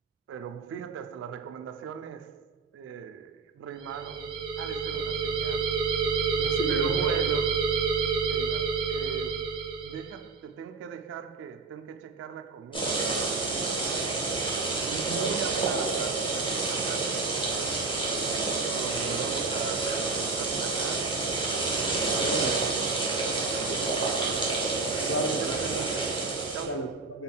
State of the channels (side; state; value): left; quieter; 4.0 dB